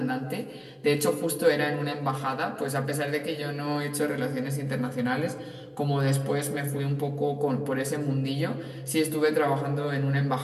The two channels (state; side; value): identical; both; correlation 1.00